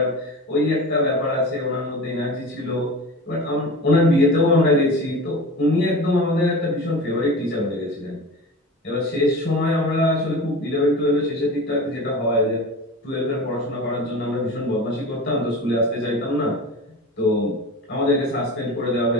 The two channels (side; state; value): both; normal; correlation 0.33